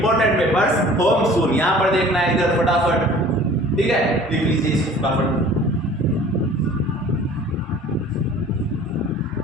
papers home soon. यहाँ पर देखना है इधर फटाफट, ठीक है, लिख लीजिए इसको फटाफट।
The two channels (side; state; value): both; normal; correlation 0.48